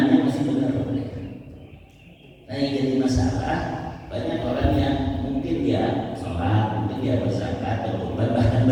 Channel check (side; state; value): both; identical; correlation 1.00